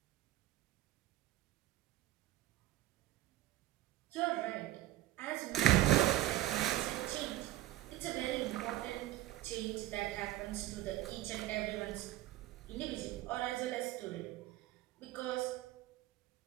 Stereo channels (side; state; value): left; quieter; 15.3 dB